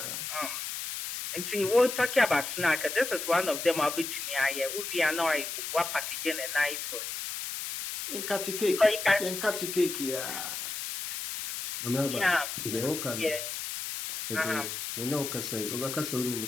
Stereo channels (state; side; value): noise; left; hiss, 5 dB below the sound